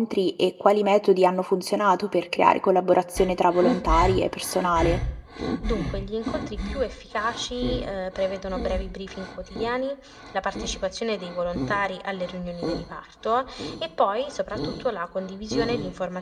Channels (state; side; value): identical; both; correlation 1.00